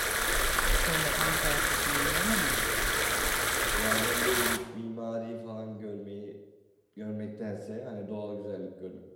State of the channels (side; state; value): both; identical; correlation 1.00